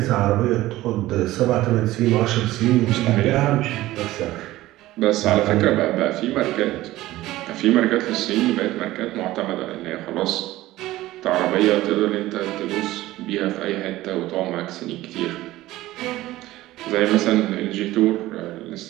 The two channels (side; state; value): left; quieter; 16.6 dB